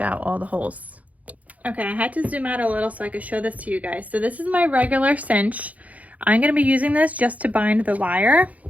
out all the holes. Okay, I had to zoom out a little so I could show this to you guys. So this is my regular cinch. I'm going to be using this just to bind the wire.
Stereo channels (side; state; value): left; late; 0.072 ms